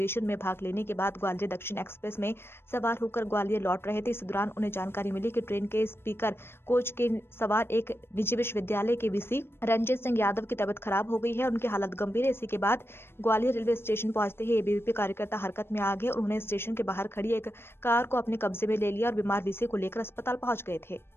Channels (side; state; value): right; late; 0.11 ms